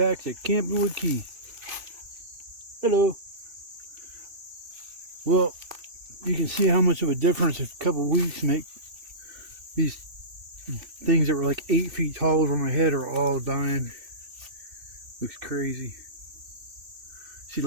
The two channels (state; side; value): late; left; 3.4 ms